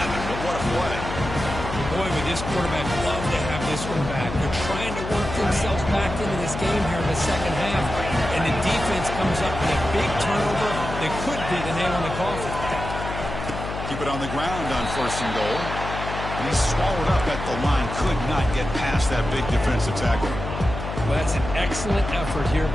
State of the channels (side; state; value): left; noise; hum, 7 dB below the sound